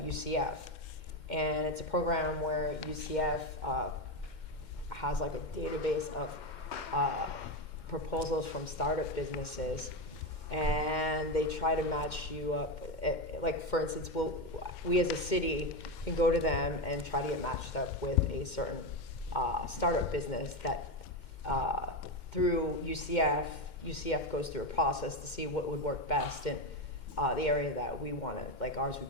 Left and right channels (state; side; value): late; right; 2.1 ms